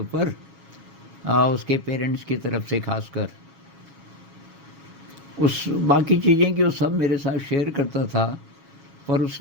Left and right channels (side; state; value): left; late; 6.3 ms